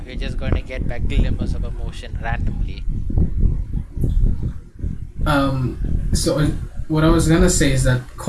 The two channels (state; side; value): identical; both; correlation 1.00